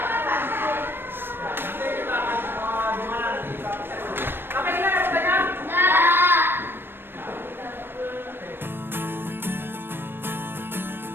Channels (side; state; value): left; late; 0.10 ms